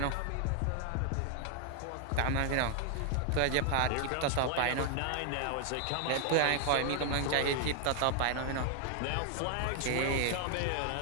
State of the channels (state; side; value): different; both; correlation 0.00